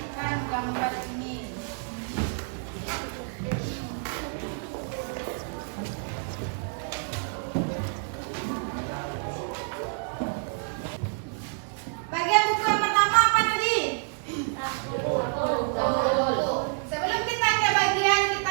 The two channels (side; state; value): left; silent; 55 dB below the other